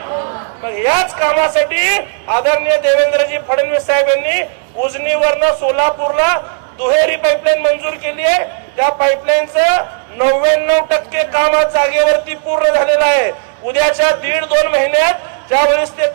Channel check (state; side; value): silent; left; digital silence